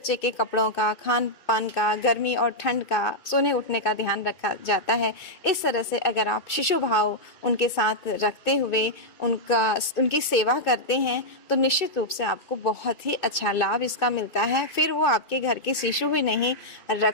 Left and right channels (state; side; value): late; right; 2.2 ms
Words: के कपड़ों का, खान पान का, गर्मी और ठंड का, सोने उठने का ध्यान रखा जाता है, इस तरह से अगर आप शिशु भाव उनके साथ रखते हुए उनकी सेवा करते हैं तो निश्चित रूप से आपको बहुत ही अच्छा लाभ इसका मिलता है। फिर वो आपके घर के शिशु ही नहीं,